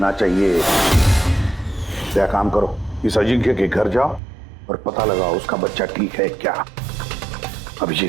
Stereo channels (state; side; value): drops out; left; at 4.2 s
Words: चाहिए। क्या काम करो, इस अजिंक्य के घर जाओ और पता लगाओ उसका बच्चा ठीक है क्या।